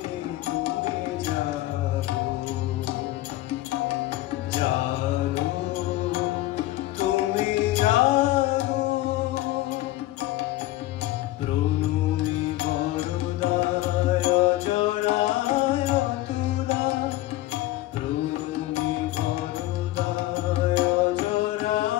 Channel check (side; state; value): right; quieter; 16.6 dB